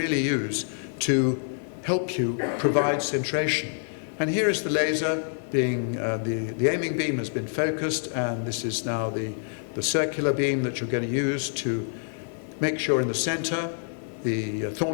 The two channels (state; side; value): silent; right; digital silence